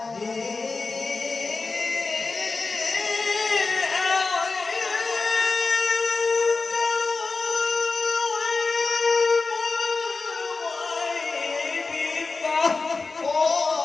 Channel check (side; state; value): right; quieter; 4.0 dB